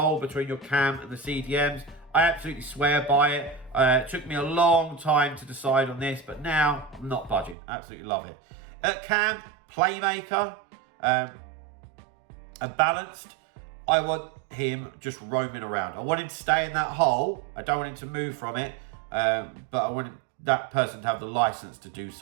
between your cam and the CDMs. I absolutely swear by it. It took me a long time to decide on this, but now I'm not budging. Absolutely love it. At cam, playmaker. And balanced, I want him just roaming around. I want him to stay in that hole. I don't want him to move from it, but I want that person to have the license to do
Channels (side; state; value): left; drops out; at 7.6 s